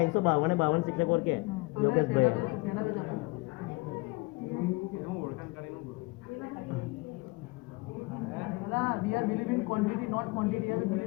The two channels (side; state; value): right; quieter; 24.7 dB